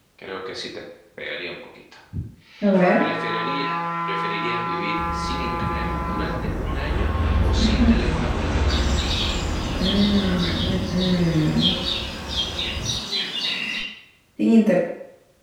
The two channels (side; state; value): both; identical; correlation 1.00